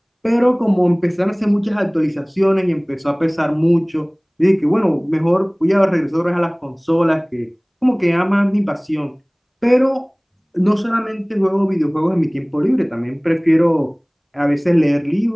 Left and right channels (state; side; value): identical; both; correlation 1.00